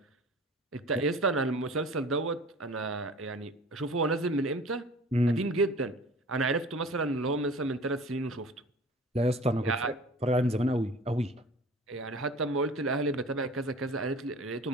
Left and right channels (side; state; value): both; normal; correlation 0.43